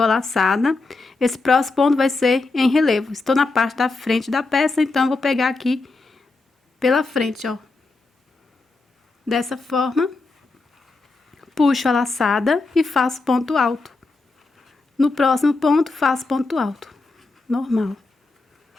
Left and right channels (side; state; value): right; quieter; 3.6 dB